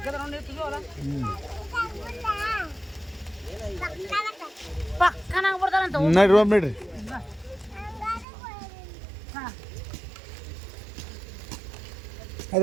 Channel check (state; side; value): drops out; left; at 8.2 s